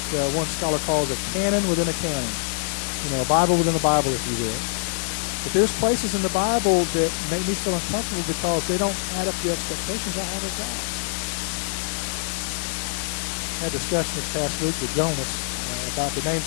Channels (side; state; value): right; silent; 62 dB below the other